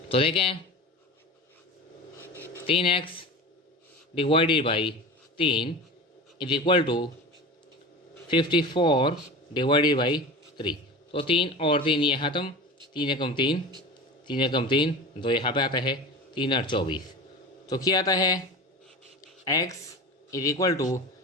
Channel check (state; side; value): normal; both; correlation 0.32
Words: तो देखें 3x divided by 3 is equal to 54 divided by 3। तो 3 और 3 ये ख़त्म, 3 एकम 3, 3 एकम 3, 2 यहाँ पे आता है, 3 और 24। तो क्या आता है, x इज इक्वल टू